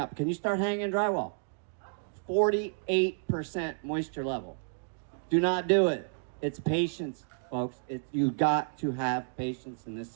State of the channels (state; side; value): silent; left; digital silence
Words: Can you start hanging drywall? 48% moisture level. Do not do it. It's patience, folks. You got to have patience in this